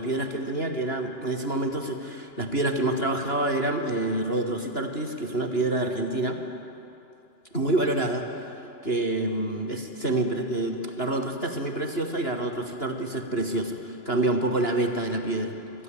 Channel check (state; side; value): late; right; 2.9 ms